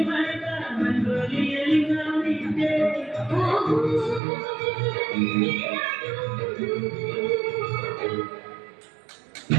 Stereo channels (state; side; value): drops out; left; at 4.2 s